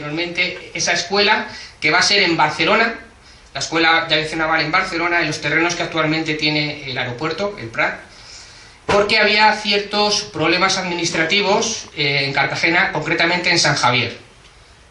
esa escuela que va a ser en Barcelona, la Escuela de Aviación Naval en Barcelona, en los terrenos que actualmente tiene el aeropuerto, el Prat, porque había ciertos problemas administrativos en Cartagena, concretamente en San Javier.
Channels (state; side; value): identical; both; correlation 1.00